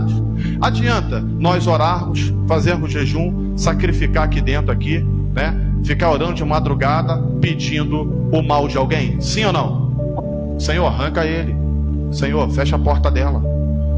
Adianta nós orarmos, fazermos jejum, sacrificar aqui dentro, né? Ficar orando de madrugada, pedindo o mal de alguém? Sim ou não? Senhor, arranca ele. Senhor, fecha a porta dela.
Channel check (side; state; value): both; identical; correlation 1.00